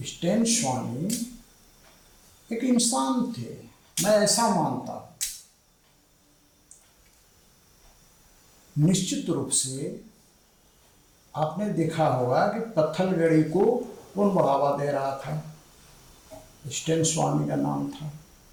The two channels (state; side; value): identical; both; correlation 1.00